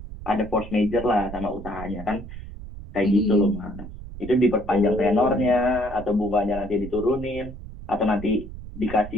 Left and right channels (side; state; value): right; noise; rumble, 12 dB below the sound